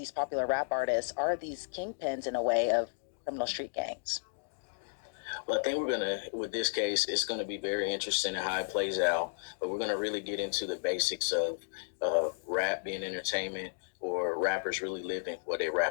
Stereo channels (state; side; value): silent; right; digital silence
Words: popular rap artists are these kingpins in a way of criminal street gangs? Well, I think with this case, it's gonna be very interesting in how it plays out. But we're gonna really get into the basics of rap being entertainment or rappers really living what they